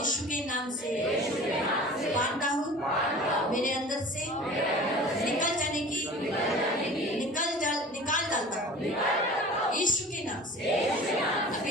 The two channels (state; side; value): normal; both; correlation 0.41